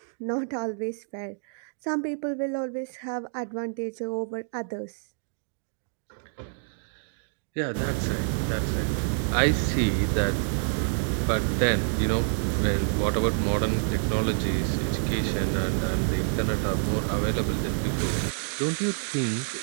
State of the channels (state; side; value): silent; left; digital silence